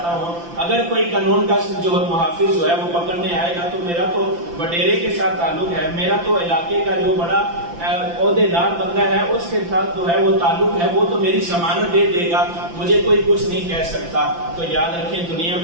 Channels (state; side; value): late; left; 5.9 ms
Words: ہوں، اگر کوئی قانون کا جو محافظ جو ہے وہ پکڑنے آئے گا تو میرا تو وڈیرے کے ساتھ تعلق ہے، میرا تو علاقے کا جو بڑا عہدے دار بندہ ہے اس کے ساتھ جو ہے وہ تعلق ہے، وہ تو میری ضمانت دے دے گا، مجھے کوئی کچھ نہیں کہہ سکتا۔ تو یاد رکھیں دنیا